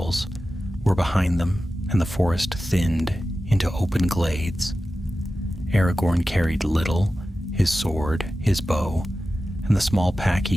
were behind them and the forest thinned into open glades. Aragorn carried little, his sword, his bow, and the small pack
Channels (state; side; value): normal; both; correlation 0.94